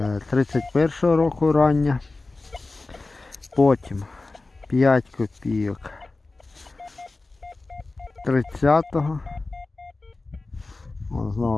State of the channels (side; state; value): right; quieter; 3.4 dB